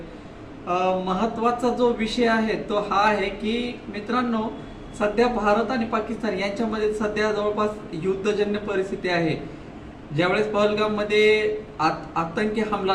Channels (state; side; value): identical; both; correlation 1.00